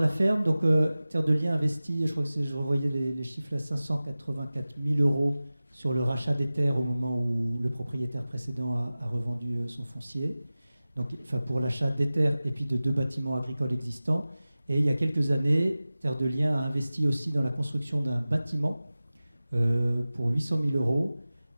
la ferme, donc Terre de Liens investit, je crois que je revoyais les chiffres, à 584 000 € sur le rachat des terres au moment où le propriétaire précédent a revendu son foncier. Donc, enfin, pour l'achat des terres et puis de 2 bâtiments agricoles existants. Et il y a quelques années, Terre de Liens a investi aussi dans la construction d'un bâtiment pour 800 000 €.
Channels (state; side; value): inverted; both; correlation -0.97